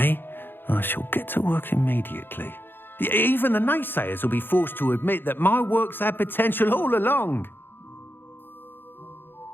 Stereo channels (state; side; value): late; right; 0.099 ms